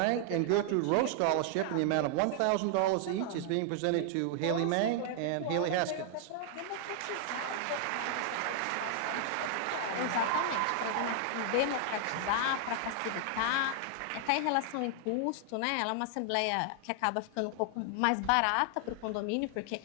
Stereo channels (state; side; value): different; both; correlation 0.00